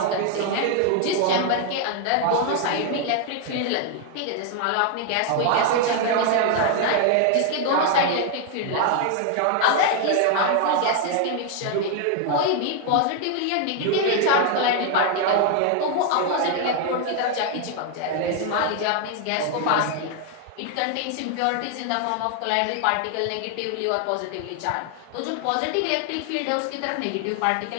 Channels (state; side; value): different; both; correlation 0.00